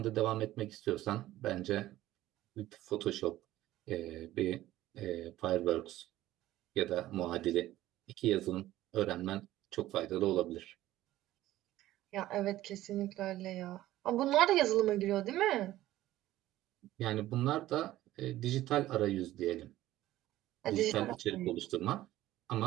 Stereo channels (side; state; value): left; quieter; 15.0 dB